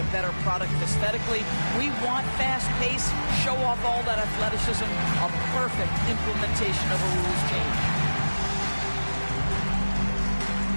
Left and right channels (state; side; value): inverted; both; correlation -1.00